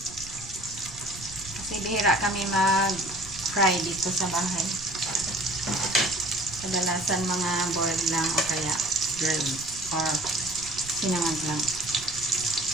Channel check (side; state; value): right; noise; rumble, 16 dB below the sound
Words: Kasi bihira kami mag-fry dito sa bahay. Kadalasan mga boiled lang o kaya grilled or sinangag lang.